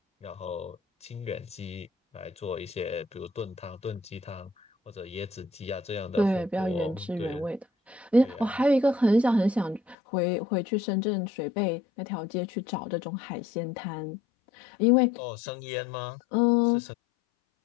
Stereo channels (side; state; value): right; drops out; at 10.0 s